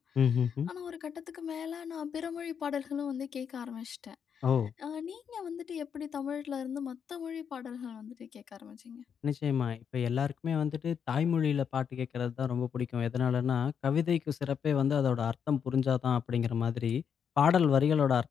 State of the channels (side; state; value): right; quieter; 7.4 dB